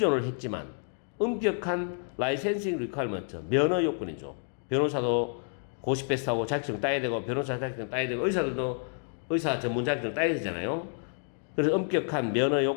했지만 엄격한 라이센싱 리퀘어먼트, 면허 요건이죠. 변호사도 고시 패스하고 자격증 따야 되고 변호사 자격증 따야 되고 의사들도 의사 전문 자격증 따야 되잖아요. 그래서 엄격한 면허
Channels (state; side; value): silent; right; 58 dB below the other